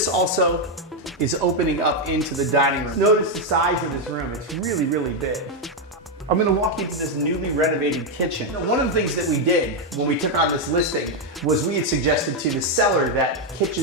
also is opening up into the dining room. Notice the size of this room. It's really big. I'm going to walk you to this newly renovated kitchen. One of the things that we did when we took on this listing was we had suggested to the seller that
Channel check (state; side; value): normal; both; correlation 0.03